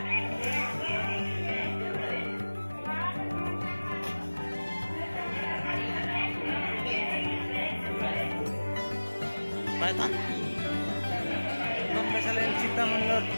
पायथन कशाला चित्ता म्हणलं.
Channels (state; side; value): inverted; both; correlation -1.00